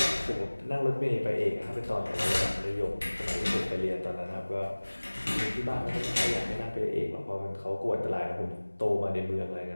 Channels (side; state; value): both; inverted; correlation -1.00